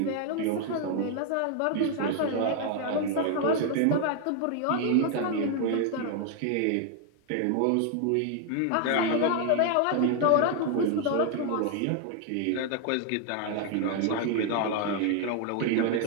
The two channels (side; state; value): both; different; correlation 0.01